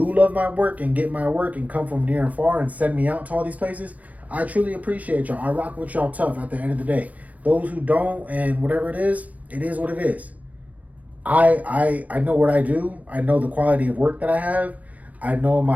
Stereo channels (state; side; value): late; left; 0.071 ms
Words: love my work and get my work and come from near and far and send me out to all these places, I truly appreciate y'all. I rock with y'all tough at the end of the day. Those who don't and whatever it is what it is. I know what I do. I know the quality of work that I have. I know